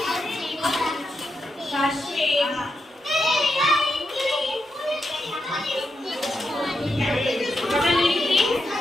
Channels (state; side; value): normal; both; correlation 0.85